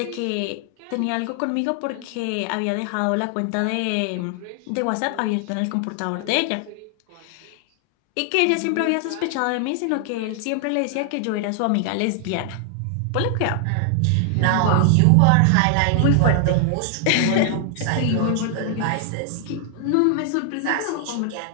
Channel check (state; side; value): different; both; correlation 0.00